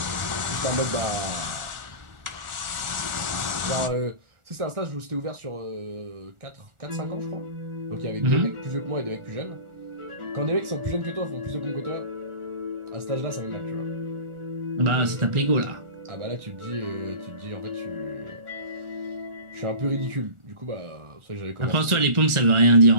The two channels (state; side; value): late; left; 1.4 ms